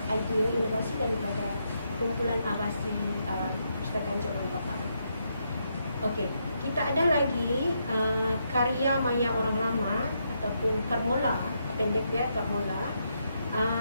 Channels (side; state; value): both; inverted; correlation -0.79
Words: idea inovasi daripada kumpulan Abasi Perpustakaan Cawangan Papar. Okey, kita ada lagi karya maya orang lama ataupun Karmola pendek dia, Karmola.